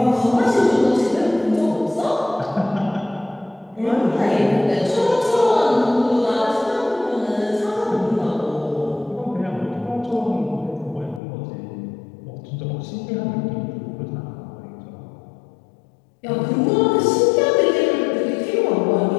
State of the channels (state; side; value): drops out; right; at 11.2 s